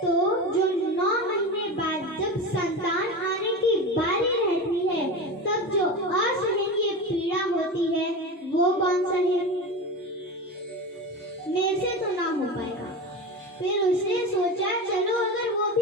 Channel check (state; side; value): normal; both; correlation 0.25